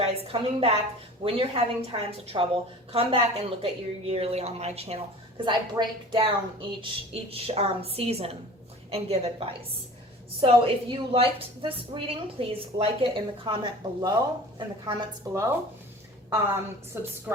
coming back when you're having times of trouble. Come back and look at your yearly on my channel, because I break down each season and give advice. So if you liked this reading, please like it in the comments below.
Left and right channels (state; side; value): normal; both; correlation 0.42